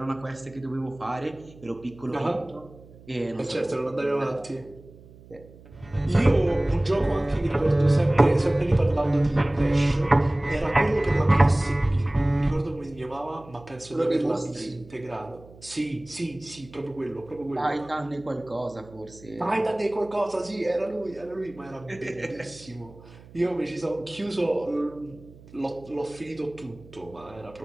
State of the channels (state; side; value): noise; right; hum, 22 dB below the sound